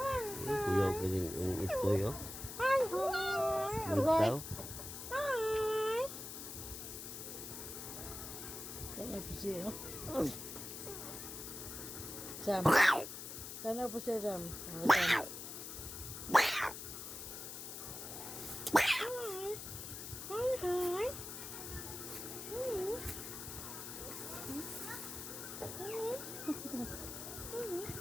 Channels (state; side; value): noise; left; hiss, 8 dB below the sound